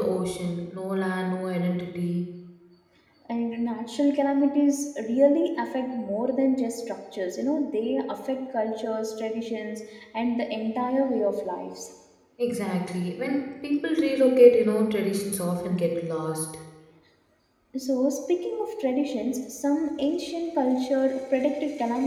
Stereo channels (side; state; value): both; identical; correlation 1.00